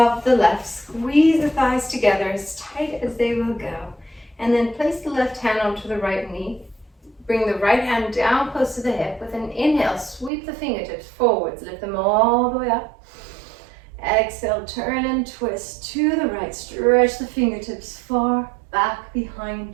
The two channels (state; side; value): drops out; left; at 10.3 s